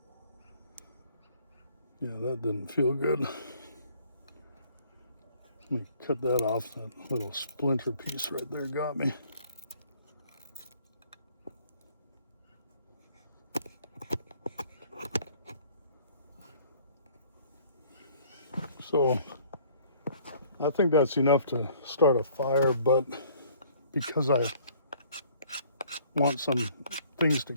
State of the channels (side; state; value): both; inverted; correlation -0.58